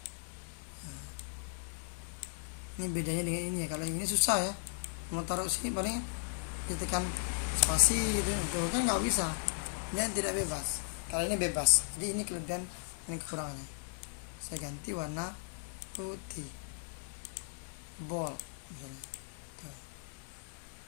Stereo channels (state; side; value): silent; right; digital silence